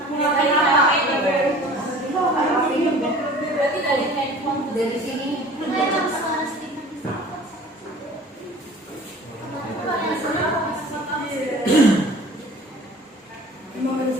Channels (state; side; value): normal; both; correlation 0.45